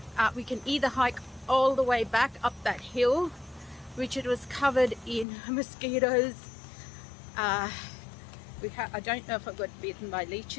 we can either hike all the way back up that hill, which it was covered in mosquitoes. I don't know if I got bitten by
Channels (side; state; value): right; drops out; at 5.2 s